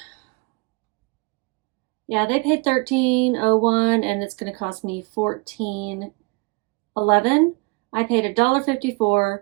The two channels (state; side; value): quieter; left; 28.9 dB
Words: Yeah, they paid $13.01 and it's going to cost me $14.11. I paid $1.54.